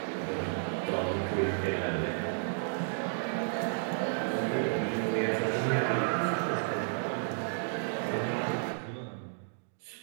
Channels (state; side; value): silent; left; digital silence